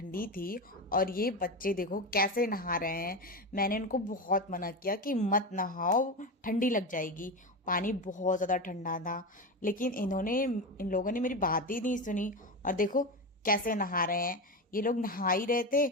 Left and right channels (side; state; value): both; normal; correlation 0.19